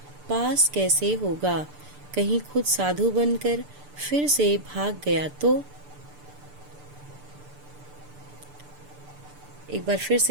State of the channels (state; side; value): late; left; 6.8 ms